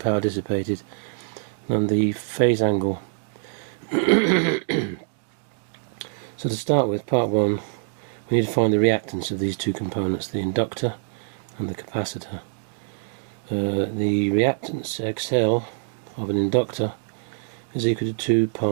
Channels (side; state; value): left; silent; digital silence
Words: dissipated, and the phase angle. So to start with, part 1, we need to find the reactance of these two components, the inductor and the capacitor. The reactance XL of an inductor is equal to 2